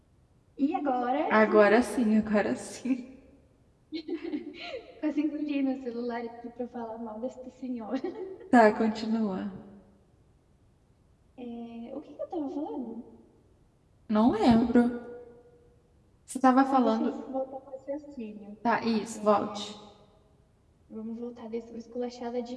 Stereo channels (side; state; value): both; identical; correlation 1.00